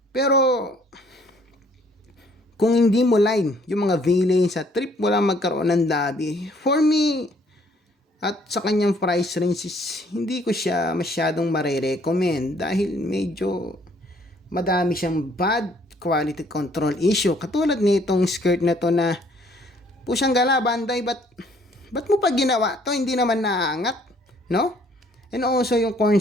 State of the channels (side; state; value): both; normal; correlation 0.62